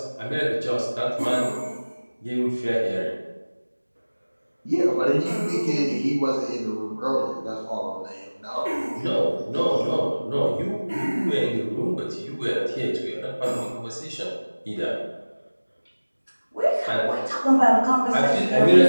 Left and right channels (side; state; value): both; inverted; correlation -1.00